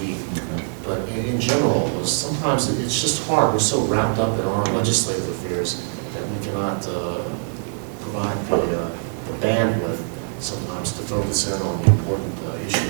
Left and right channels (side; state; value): left; silent; digital silence